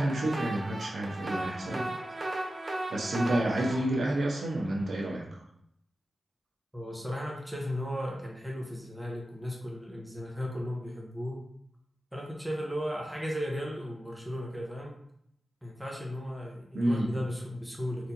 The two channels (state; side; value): normal; both; correlation 0.93